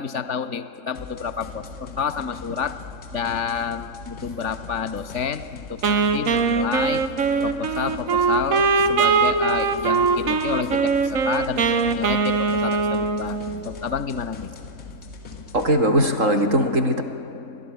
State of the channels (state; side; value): late; left; 3.8 ms